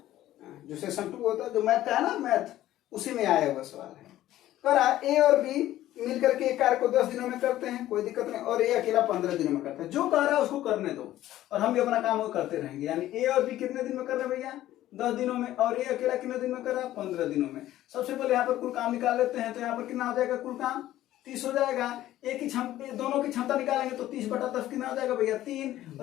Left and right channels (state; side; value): quieter; right; 14.0 dB